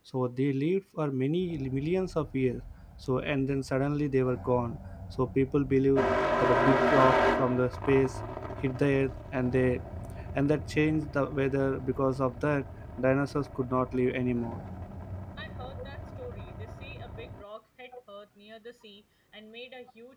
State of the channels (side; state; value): both; identical; correlation 1.00